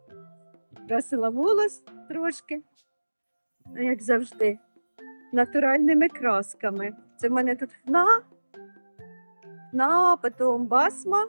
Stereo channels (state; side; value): inverted; both; correlation -1.00